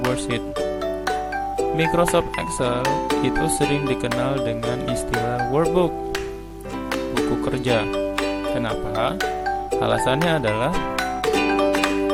worksheet. Microsoft Excel itu sering dikenal dengan istilah workbook, buku kerja. Kenapa? Alasannya adalah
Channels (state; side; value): identical; both; correlation 1.00